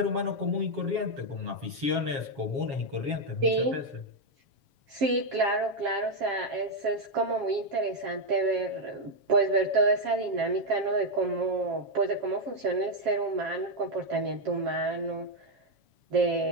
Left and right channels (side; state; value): left; late; 7.2 ms